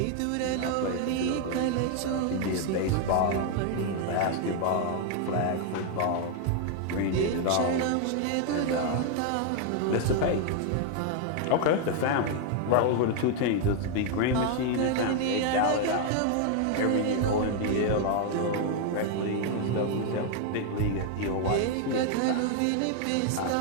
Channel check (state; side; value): different; both; correlation 0.00